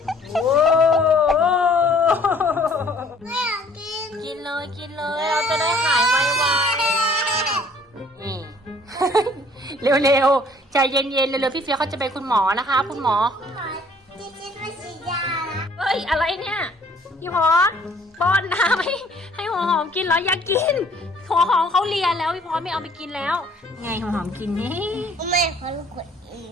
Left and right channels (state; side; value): normal; both; correlation 0.57